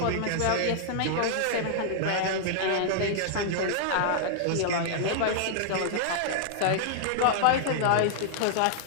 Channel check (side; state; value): both; different; correlation -0.01